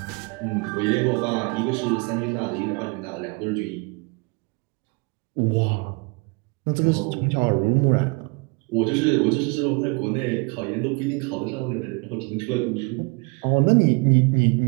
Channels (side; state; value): left; quieter; 30.4 dB